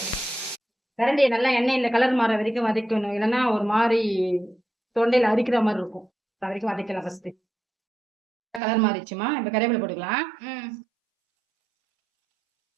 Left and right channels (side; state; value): left; drops out; at 8.6 s